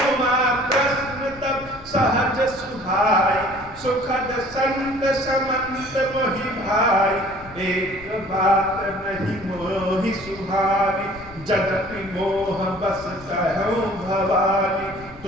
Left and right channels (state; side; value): noise; left; rumble, 19 dB below the sound